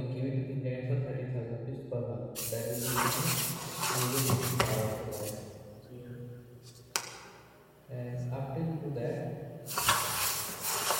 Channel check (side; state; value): both; identical; correlation 1.00